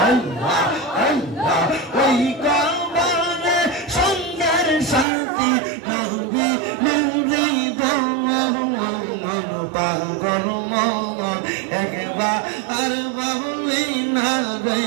আল্লাহ আল্লাহ ওই কাবারে সুন্দর শান্তি নবী নূরে দমন পাগল মন একবার আর বলে না রে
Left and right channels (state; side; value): drops out; left; at 5.1 s